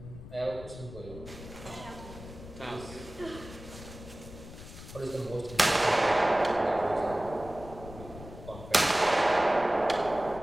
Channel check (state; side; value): noise; left; rumble, 14 dB below the sound